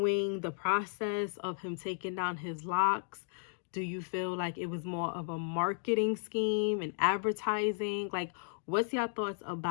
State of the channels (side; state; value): right; silent; digital silence